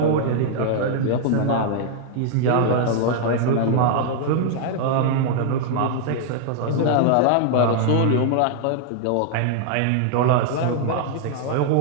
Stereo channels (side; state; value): both; different; correlation -0.01